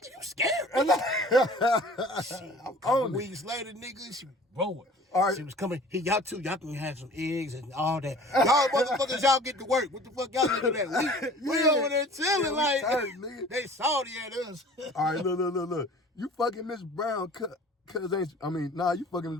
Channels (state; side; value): normal; both; correlation 0.47